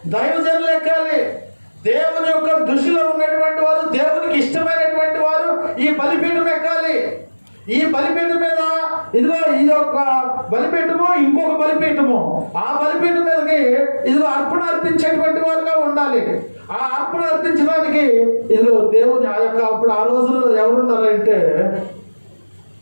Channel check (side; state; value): both; inverted; correlation -1.00